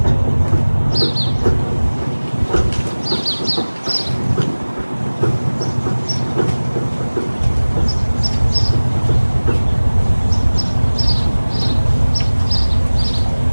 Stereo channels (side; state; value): both; inverted; correlation -1.00